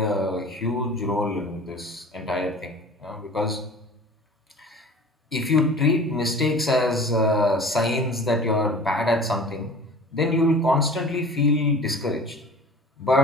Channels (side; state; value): both; normal; correlation 0.42